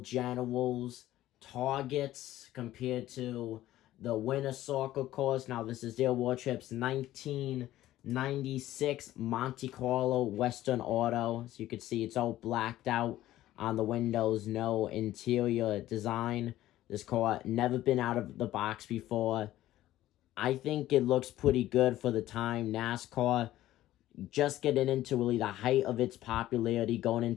Generals, Targets, compared to the Winner Circle cars. Now this is Dale Wardrop's 1996 Monte Carlo Western Auto. So you can see it's all blacked out on the windows, no interior design. This car never been out of the box before. I think it looks pretty good for the time. NASCAR just getting into really the height of its popularity, going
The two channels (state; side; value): quieter; right; 14.4 dB